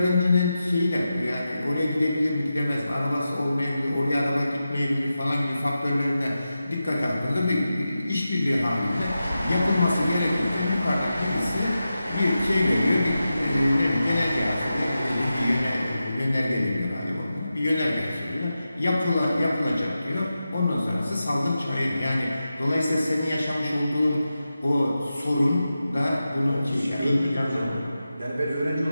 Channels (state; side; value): inverted; both; correlation -0.91